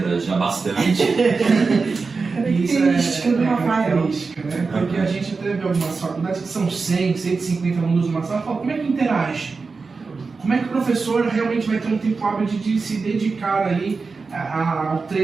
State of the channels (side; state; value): left; quieter; 4.4 dB